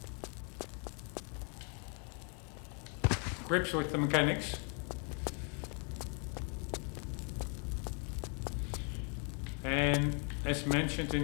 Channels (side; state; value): right; quieter; 38.5 dB